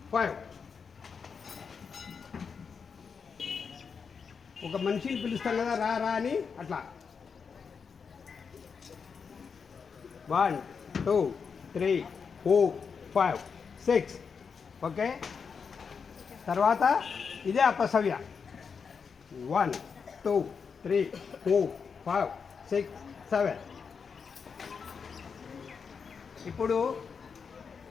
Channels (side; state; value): right; quieter; 5.9 dB